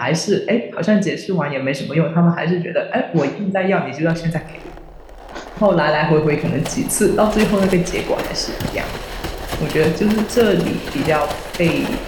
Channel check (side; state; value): both; identical; correlation 1.00